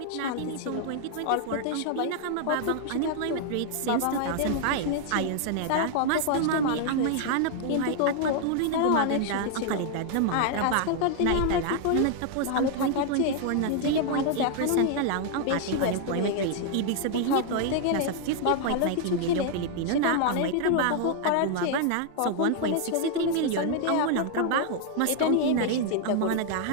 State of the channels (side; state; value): both; different; correlation 0.00